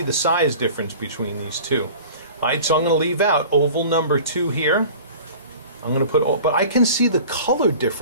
the size difference between these two. Alright, so I'm going to leave out oval number 2 here. I'm going to put, but I can see the color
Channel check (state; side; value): inverted; both; correlation -0.41